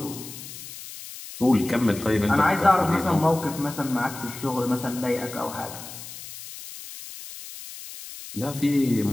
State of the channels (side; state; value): left; noise; hiss, 13 dB below the sound